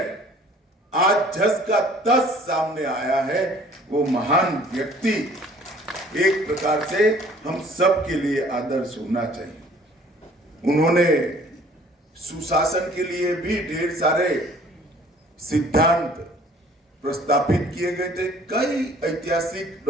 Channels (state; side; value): normal; both; correlation 0.54